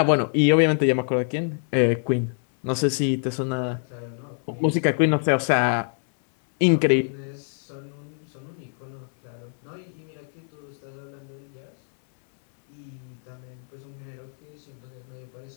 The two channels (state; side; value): silent; right; 61 dB below the other